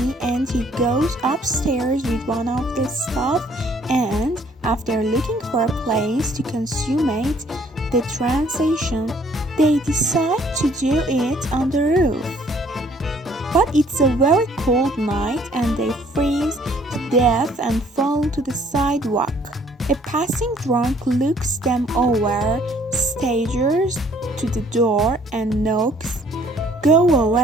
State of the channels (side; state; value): both; normal; correlation 0.60